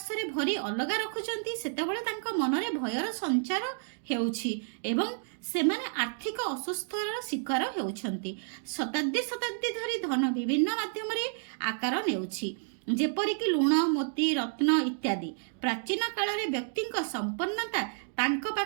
भरी अलगा रखुचंती, सेतेबेले तांका मनरे भयर संचार हेउछि एवं सेमाने आर्थिक असुस्थर शिकार हेउछंती। शताब्दी शताब्दी धरी धन विभिन्न माध्यम रे आकार नेउछि, जेपरिक लुण, मोती, रत्न इत्यादि। प्राचीन काल रे व्यक्तिक संपन्नता तांक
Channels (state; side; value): silent; left; digital silence